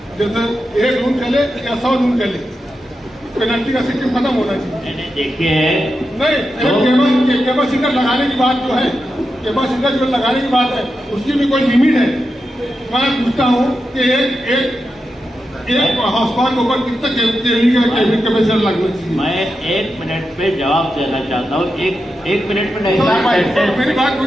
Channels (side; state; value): both; normal; correlation 0.88